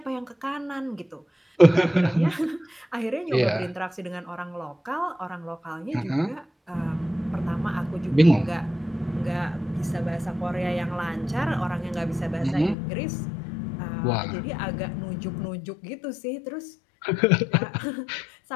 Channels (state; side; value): drops out; right; at 12.8 s